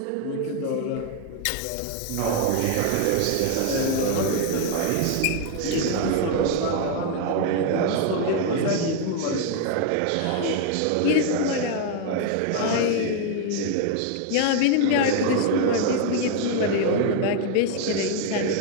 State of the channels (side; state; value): both; different; correlation 0.00